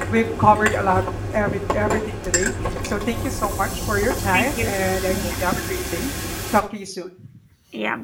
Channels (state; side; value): identical; both; correlation 1.00